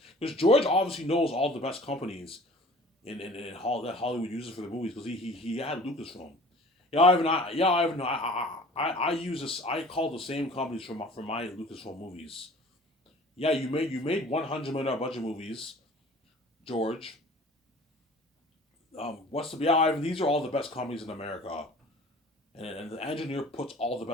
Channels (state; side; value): normal; both; correlation 0.46